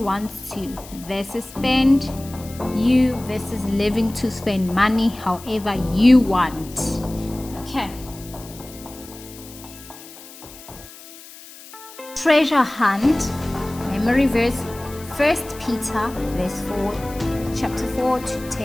to, versus spend you versus living to spend money however you want. Okay. Treasure hunt. Memory verse 1 Peter verse 4, chapter 4 to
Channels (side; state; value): left; noise; hiss, 18 dB below the sound